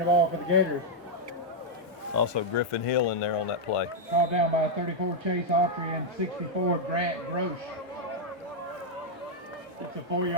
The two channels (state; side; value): normal; both; correlation -0.03